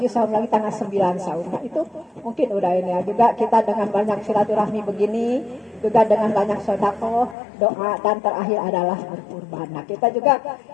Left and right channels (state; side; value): drops out; right; at 7.4 s